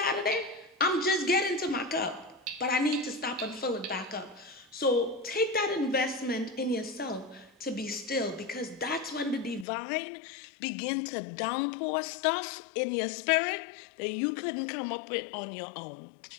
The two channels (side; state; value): right; drops out; at 9.7 s